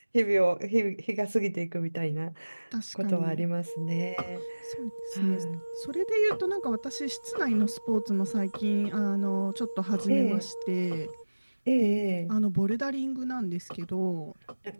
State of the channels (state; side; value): inverted; both; correlation -1.00